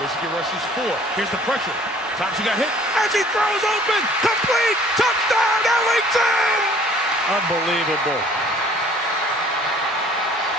rushes 4. Here's the pressure. Thompson got hit as he throws open. Complete. Touchdown, Ellington! Unbelievable.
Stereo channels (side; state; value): both; normal; correlation 0.54